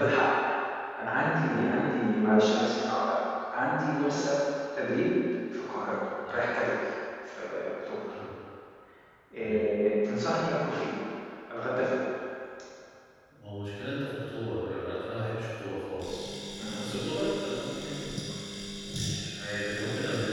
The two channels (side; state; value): both; identical; correlation 1.00